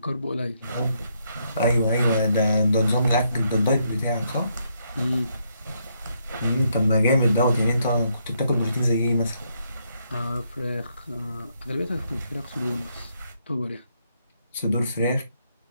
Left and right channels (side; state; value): both; inverted; correlation -0.75